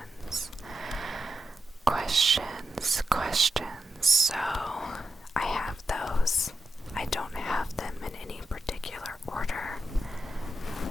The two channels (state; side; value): normal; both; correlation 0.87